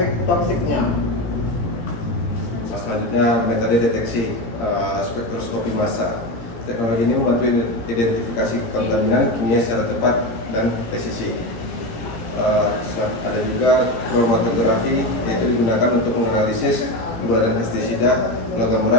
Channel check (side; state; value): right; late; 17 ms